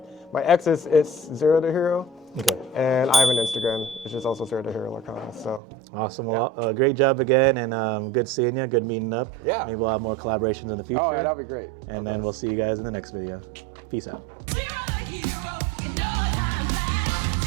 X is ZeroTheHero. Okay. And I have an Instagram, which is also ZeroTheHero Lorcana. So awesome. Well, great job again, and good seeing you. Good meeting up. Yeah. Maybe we'll have more collaborations in the future. Oh yeah, that'll be great. And then we'll see you guys in the next video. Peace out. ZeroTheHero.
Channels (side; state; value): left; drops out; at 5.6 s